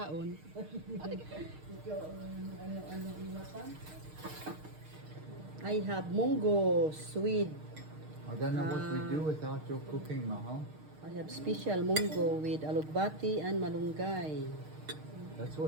I have munggo, sweet. I don't know what we do without your cooking, Mahal. I have special munggo with alugbati and malunggay. That's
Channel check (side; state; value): left; late; 6.5 ms